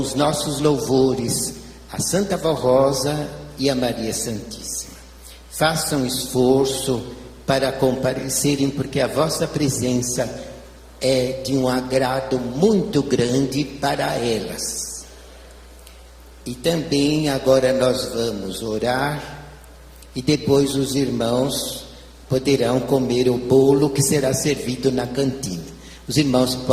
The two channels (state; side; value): identical; both; correlation 1.00